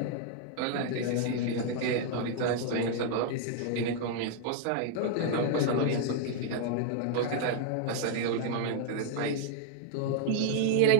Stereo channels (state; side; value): different; both; correlation 0.00